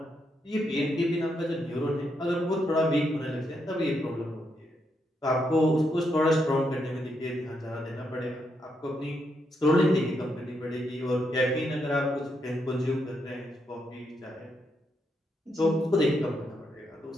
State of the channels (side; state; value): both; normal; correlation 0.80